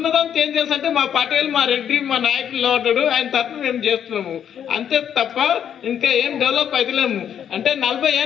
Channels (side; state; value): right; quieter; 9.0 dB